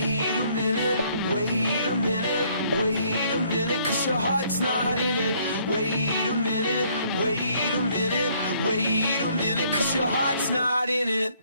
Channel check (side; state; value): both; inverted; correlation -0.64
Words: a minute, wait a minute, wait a minute, 'cause your heart's not in it. Wait a minute, wait a minute, wait a minute, 'cause your heart's not in it.